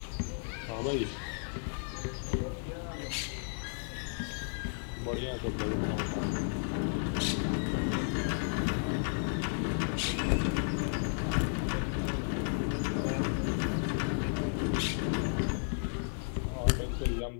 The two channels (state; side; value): silent; right; 56 dB below the other